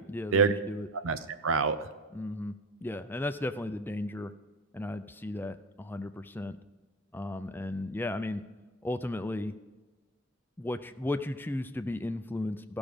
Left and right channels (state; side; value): normal; both; correlation 0.34